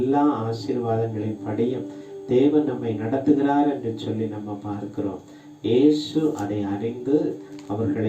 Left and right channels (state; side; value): identical; both; correlation 1.00